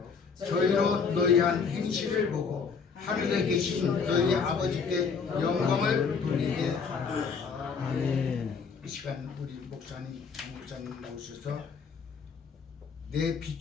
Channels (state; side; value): quieter; right; 5.6 dB